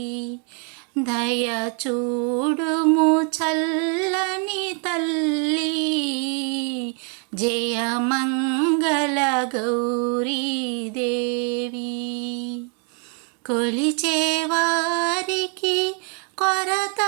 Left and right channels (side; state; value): left; quieter; 39.8 dB